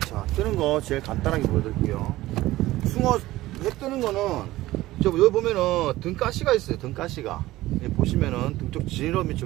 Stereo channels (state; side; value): quieter; left; 16.9 dB